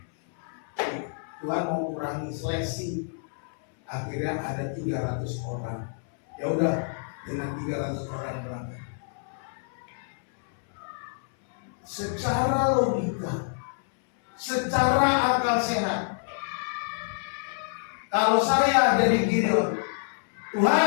Tuhan mau kurangi seleksi. Akhirnya ada 300 orang. Ya udah, dengan 300 orang berangkat. Secara logika, secara akal sehat, kalau saya jadi Gideon,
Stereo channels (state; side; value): silent; right; 60 dB below the other